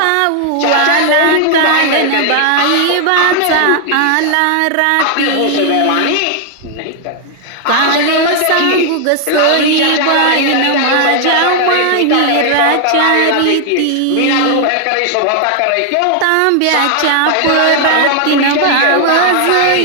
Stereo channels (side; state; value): both; different; correlation 0.00